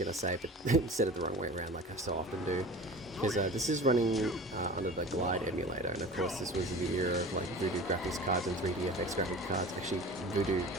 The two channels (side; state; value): both; normal; correlation 0.38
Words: to say, but instead of the wrong way around like I so often do. Because this is running under the Glide emulator, and of course this was the era of like Voodoo graphics cards and 3DFX graphics cards. Actually, Voodoo,